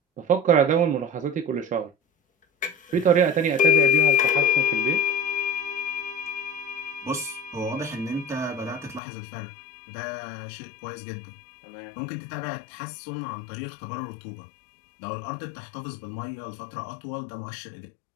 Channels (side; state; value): right; drops out; at 9.0 s